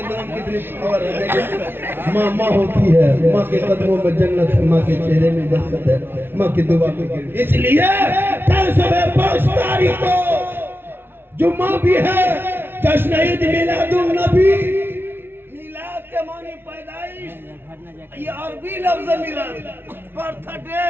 नाम कितनी पावर है। माँ माँ होती है, माँ के कदमों में जन्नत है, माँ के चेहरे में बरकत है, माँ की दुआ में। इसलिए 5 तारीख को जुम्मा भी है, जश्न ईद मिलादुन नबी। मिलाद के मानी पैदाइश, ये अरबी लफ्ज मिलाद, बर्थडे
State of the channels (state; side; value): late; left; 0.11 ms